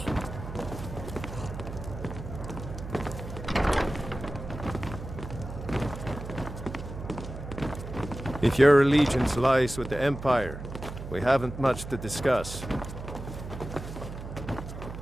If your allegiance lies with the Empire, we haven't much to discuss.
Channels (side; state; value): right; noise; hum, 10 dB below the sound